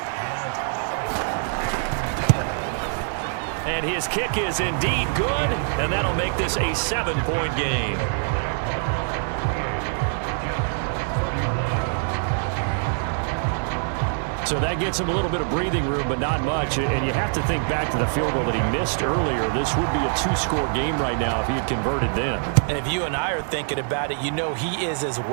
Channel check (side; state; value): left; silent; 62 dB below the other